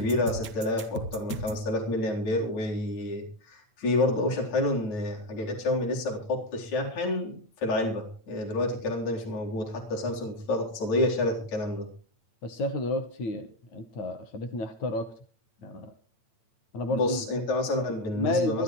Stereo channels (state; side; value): late; right; 8.9 ms